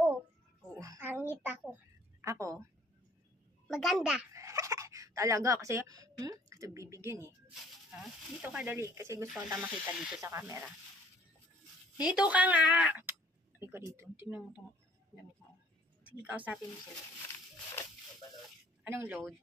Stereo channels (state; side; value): normal; both; correlation 0.57